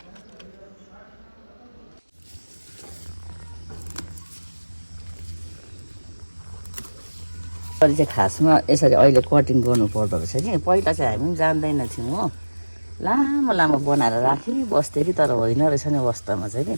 चाहिँ खासमा यसरी अहिले कटिङ गर्नुपर्दो रहेछ कि पहिला चाहिँ हामी पनि जान्दैन थियौँ हो। लामो लामो बनाएर राखिबस्थ्यो कि तर होइन रहेछ नि अवस्थामा चाहिँ कि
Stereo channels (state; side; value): inverted; both; correlation -1.00